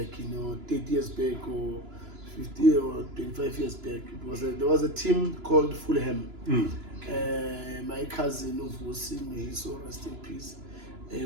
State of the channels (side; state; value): left; late; 2.9 ms